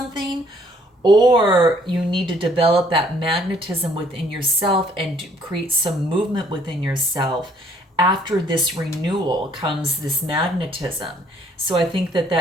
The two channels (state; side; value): normal; both; correlation 0.63